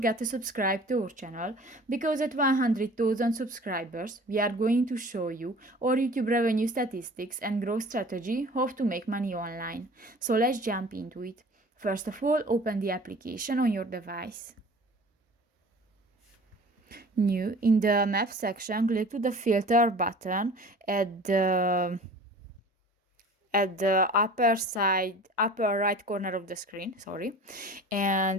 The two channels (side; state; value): both; normal; correlation 0.44